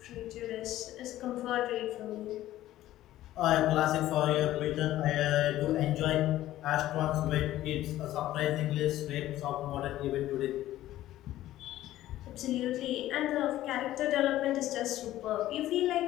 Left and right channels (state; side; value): quieter; right; 14.4 dB